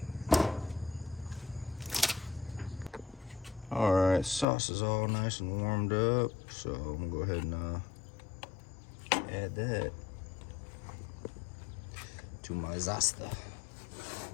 Alright, sauce is all nice and warmed up, so I'm gonna go ahead and add that to my zasta.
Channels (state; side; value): drops out; right; at 4.5 s